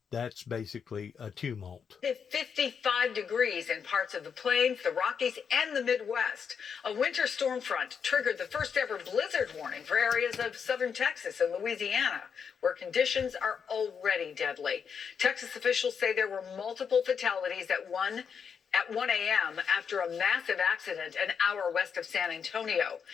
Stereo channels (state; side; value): quieter; right; 6.7 dB